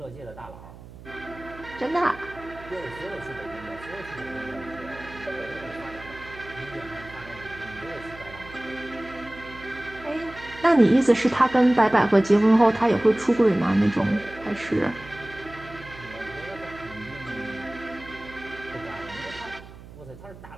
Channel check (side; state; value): right; noise; hum, 17 dB below the sound